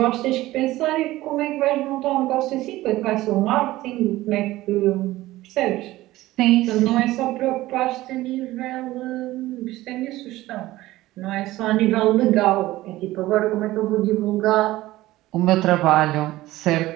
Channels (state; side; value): quieter; left; 17.0 dB